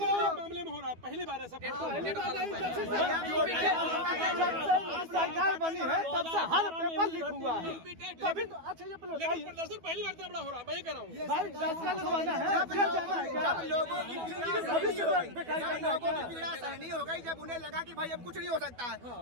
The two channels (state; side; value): late; left; 12 ms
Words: मामले में हो रहा है, पहली बार है सब। सरकार बनी है तब से हर पेपर लीक हुआ है। तभी तो अच्छा ये प्रदर्शन पहली बार इतना बड़ा हो रहा है, मैं ही कह रहा हूँ। भाई फैसला लगवाना है, जब लोगों की पीड़ा सहनी हो गई, जब उन्हें लगा कि भाई अब कुछ नहीं हो सकता है,